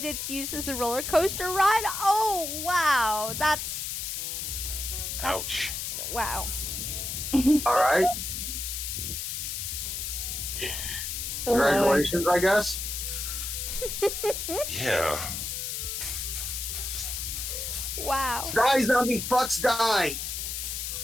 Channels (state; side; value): noise; left; hiss, 4 dB below the sound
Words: it's used as a roller coaster ride. Oh, wow. That's Ouch. wow. All right. Congratulations, I guess. Yeah. Wow. Die, zombie fucks, die.